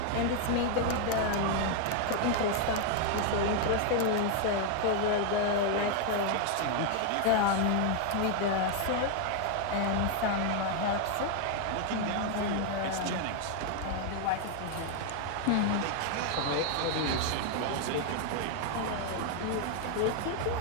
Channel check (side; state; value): both; different; correlation 0.00